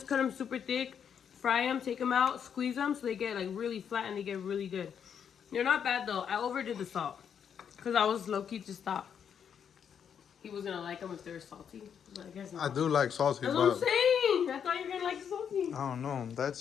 cut them super thick, fry them, take them out, squeeze them so they get like really flat and they get really good. They're not bad though. I overdid the salt because I was low-key to stop. He was gonna like them if they were salty, but I guess not. I do like salty, That's what I'm but saying. I thought you were gonna like salty. I don't know.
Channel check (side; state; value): right; quieter; 7.9 dB